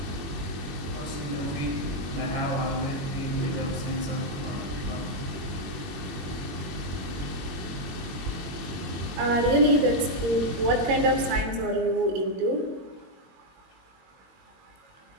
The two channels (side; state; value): left; late; 22 ms